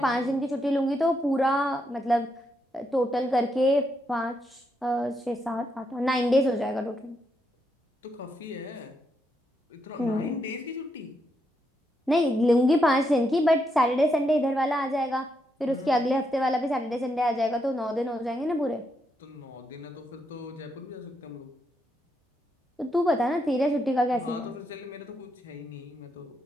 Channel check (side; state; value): both; normal; correlation 0.80